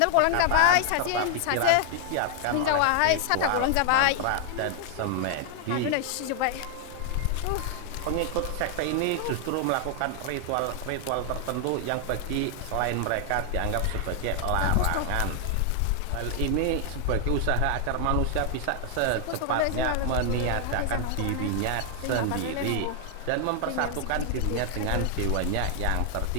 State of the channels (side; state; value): both; different; correlation 0.00